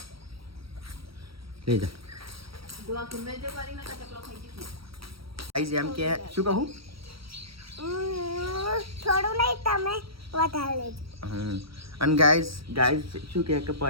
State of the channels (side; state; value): left; late; 0.75 ms